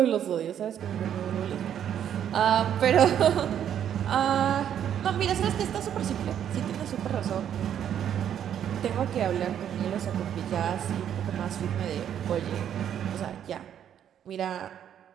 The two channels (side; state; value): left; quieter; 9.6 dB